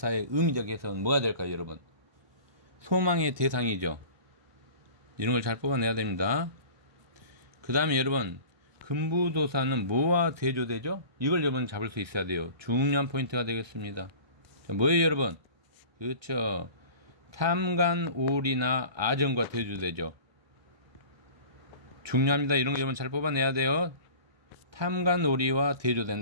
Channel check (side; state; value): left; late; 1.2 ms